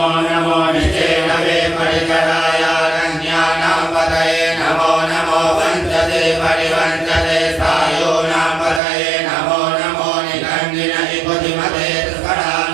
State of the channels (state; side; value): drops out; left; at 8.8 s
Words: नमो निषेधवे परिकराय रण्यानां पतये नमो नमो वंचते परिवंचते सायोनां पतये नमो नमो निगंगिने बुद्धिमते